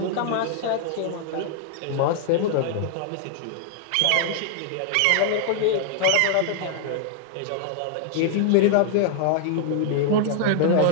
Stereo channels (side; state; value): both; different; correlation -0.01